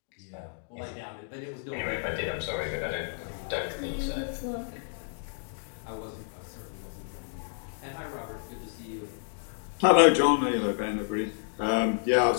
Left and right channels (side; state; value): right; silent; digital silence